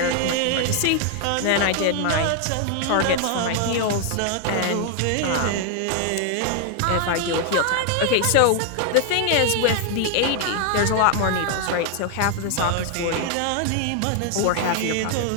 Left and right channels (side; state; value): both; different; correlation 0.00